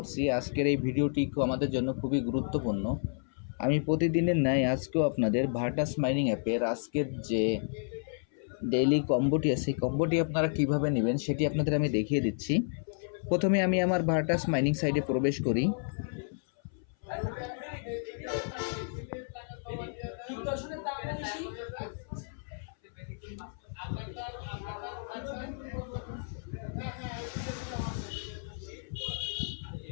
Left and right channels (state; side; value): silent; right; 57 dB below the other